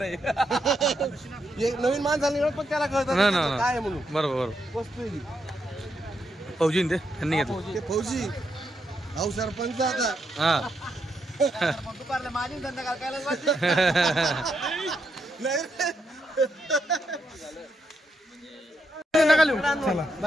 नवीन माणसाला पण त्याला कळतं काय म्हणून बरोबर वस्तू फौजी ते त्यांनी घेतलं फौजी अहो सरपंच आता हा दुपारला माझी धंदा करायला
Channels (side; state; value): both; normal; correlation 0.80